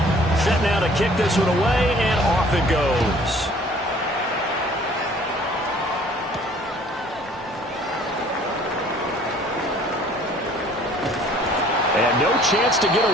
Set now to kick this one away, and off it goes. And no chance to get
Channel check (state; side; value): normal; both; correlation 0.55